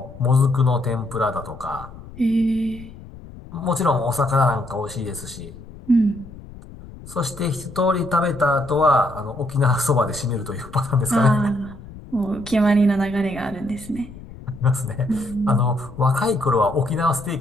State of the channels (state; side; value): noise; left; rumble, 17 dB below the sound